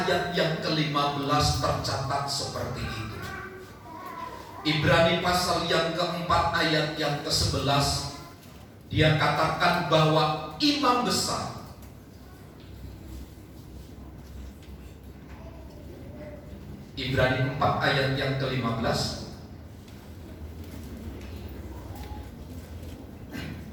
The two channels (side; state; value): both; identical; correlation 1.00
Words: yang ke-15 tercatat seperti itu. Ibrani pasal yang keempat ayat yang ke-11, dia katakan bahwa imam besar Ibrani 4 ayat yang ke-15.